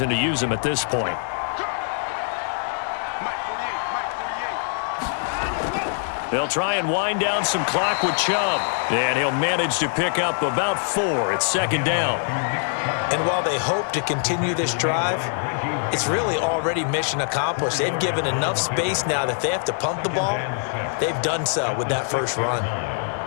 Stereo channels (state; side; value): silent; right; digital silence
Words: to use them at this point. They'll try and wind down some clock with Chubb. And he'll manage to pick up about 4. It's 2nd down. And while they hope to continue this drive, it's really already mission accomplished. They've given enough space now that if they have to punt the ball, they've done so with that first run.